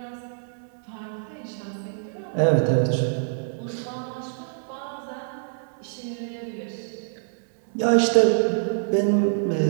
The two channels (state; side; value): silent; left; 61 dB below the other